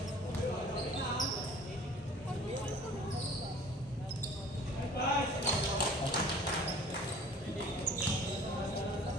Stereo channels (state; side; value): normal; both; correlation 0.48